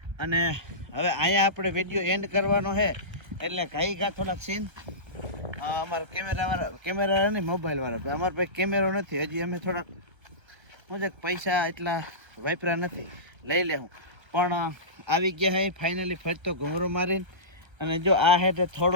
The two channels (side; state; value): left; late; 1.3 ms